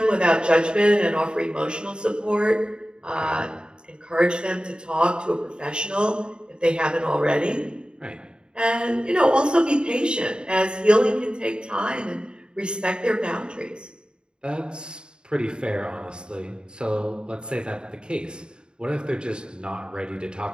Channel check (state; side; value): late; left; 0.050 ms